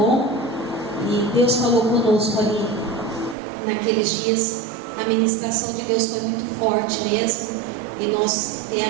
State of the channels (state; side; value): drops out; left; at 3.4 s